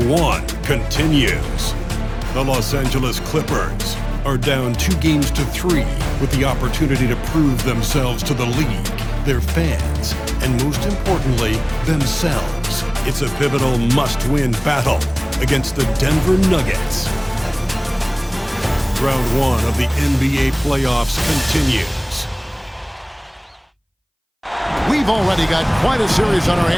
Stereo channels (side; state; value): both; identical; correlation 1.00